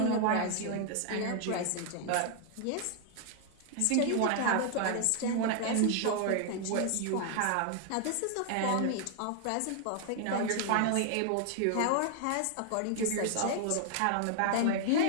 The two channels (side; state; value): both; different; correlation 0.00